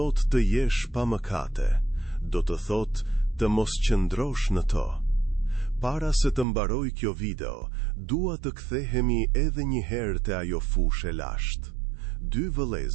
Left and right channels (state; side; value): drops out; left; at 6.5 s